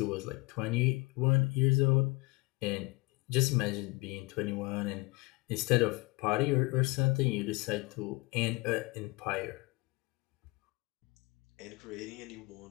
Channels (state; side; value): quieter; right; 25.4 dB